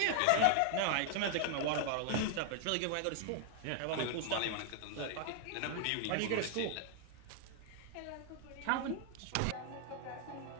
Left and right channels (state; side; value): different; both; correlation 0.00